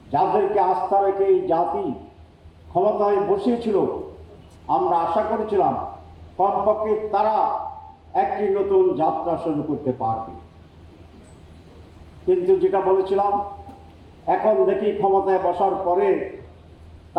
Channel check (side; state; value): both; identical; correlation 1.00